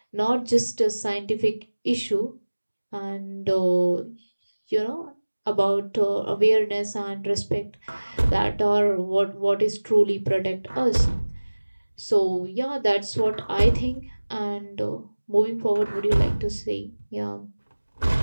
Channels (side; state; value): both; inverted; correlation -1.00